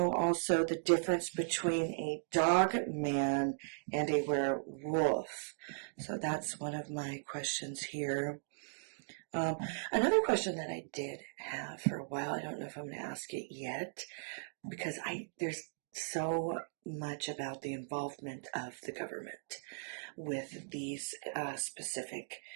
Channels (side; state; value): left; silent; digital silence